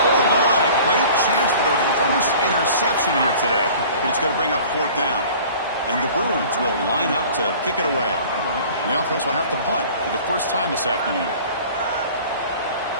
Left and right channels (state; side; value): inverted; both; correlation -0.45